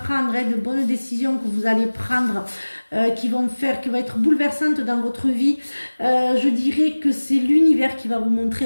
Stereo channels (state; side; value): inverted; both; correlation -1.00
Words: de bonnes décisions que vous allez prendre, qui vont être bouleversantes dans votre vie. Je dirais que c'est l'univers qui va vous montrer